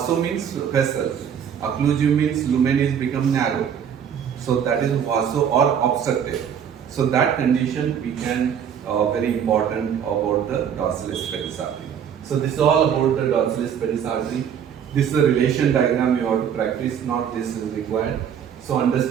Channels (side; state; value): left; quieter; 8.3 dB